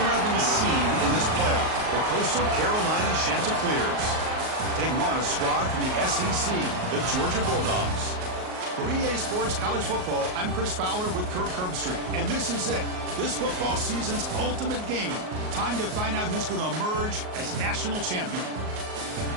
11 seed in this playoff, the Coastal Carolina Chanticleers, taking on a squad from the SEC, the Georgia Bulldogs. For EA Sports College Football, I'm Chris Fowler with Kirk Herbstreit, and this is it. This football season's ultimate game. Time to find out who's going to emerge as national champion.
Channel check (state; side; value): late; left; 38 ms